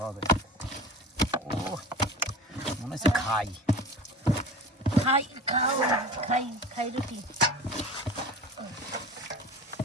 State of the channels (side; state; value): both; normal; correlation 0.35